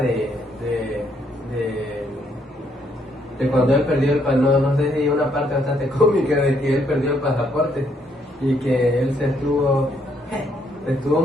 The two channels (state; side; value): normal; both; correlation 0.71